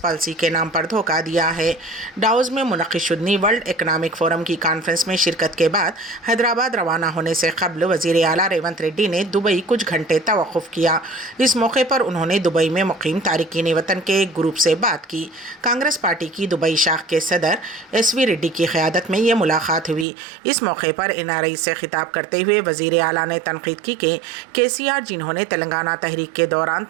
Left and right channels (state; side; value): drops out; left; at 20.1 s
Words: के नाम पर धोखा दिया है। डावोस में मुनक़्क़िद शुदनी वर्ल्ड इकनॉमिक फोरम की कॉन्फ्रेंस में शिरकत के बाद हैदराबाद रवाना होने से कबल वज़ीर आला रेवंत रेड्डी ने दुबई कुछ घंटे तवक़्क़ुफ़ किया। इस मौके पर उन्होंने दुबई में मुक़ीम तारिकीन वतन के एक ग्रुप से बात की। कांग्रेस पार्टी की दुबई शाख के सदर SV रेड्डी की क़यादत में ये मुलाकात हुई। इस मौके पर NRI से खिताब करते हुए वज़ीर आला ने तनक़ीद की कि KCR जिन्होंने तेलंगाना तहरीक के दौरान